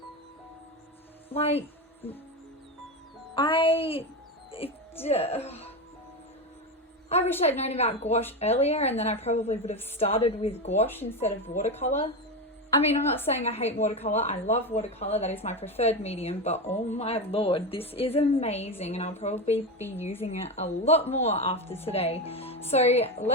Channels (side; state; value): both; normal; correlation 0.16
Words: Like, I wish I'd known about gouache earlier, and then I probably would have started with gouache instead of watercolor. I mean, I'm not saying I hate watercolor. I love watercolor. That is my preferred medium, but oh my lord, this is amazing, and I'll probably be using it a lot more after today. So